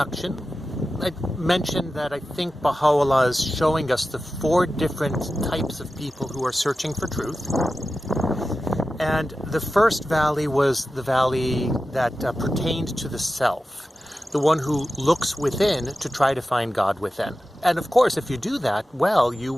I mentioned that I think Baha'u'llah is showing us the four different types of people who are searching for truth. And the first valley was the valley that pertained to the self. The one who looks within to try to find God within. And of course, if you do that, well, you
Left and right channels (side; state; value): both; normal; correlation 0.93